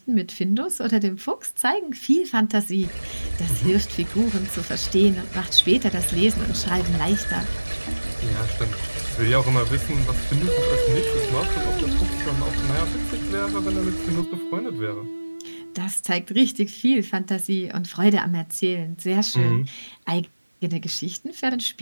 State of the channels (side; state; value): both; inverted; correlation -1.00